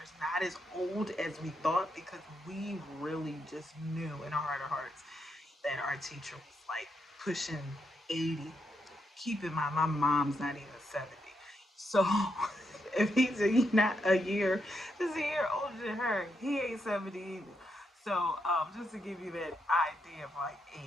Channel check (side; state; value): both; normal; correlation 0.81